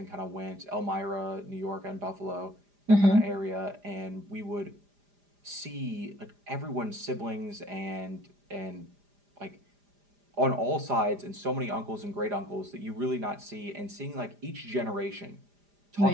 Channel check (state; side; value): late; left; 5.0 ms